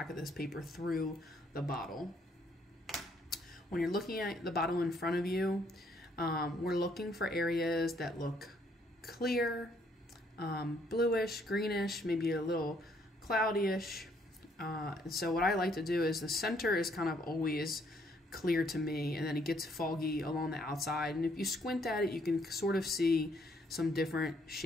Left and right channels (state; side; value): normal; both; correlation 0.68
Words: of this paper through the bottle. When you're looking at the bottle in front of you, we're looking for areas that look clear bluish, greenish, maybe a little cloudyish. And so what I like to do is the center is kind of always clear to me, and then it gets foggy along the outside. And if you squint at it, you can sort of see some different